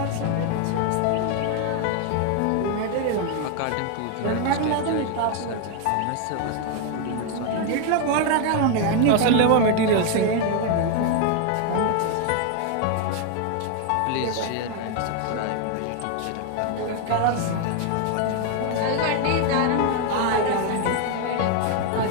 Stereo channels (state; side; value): different; both; correlation 0.01